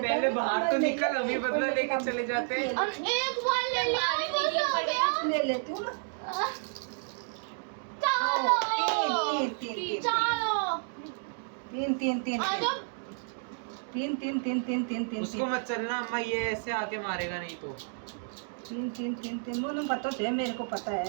पहले है, बाहर मैं तो ले निकल, लेती अभी हूँ, बदला कोई लेके मतलब चले जाते हैं। अब एक बार ले लिया हमारे बहुत लिए हो बड़े गया। ले लेती हूँ ना। चलो 3 चलो 3 आ जाओ। तीन तीन तीन तीन तीन तीन उसको मत चलना अम्मा, ये ऐसे आके मारेगा नहीं तो। तीन तीन तीन तीन मुझे पता है, मेरे को पता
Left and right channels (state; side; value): silent; left; digital silence